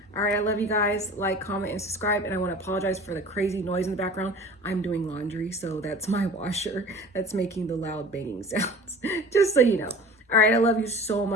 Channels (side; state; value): both; normal; correlation 0.42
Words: All right, I love you guys. Like, comment, and subscribe. And I want to apologize for the crazy noise in the background. I'm doing laundry, so that's my washer that's making the loud banging sounds, just so you know. All right, I love you so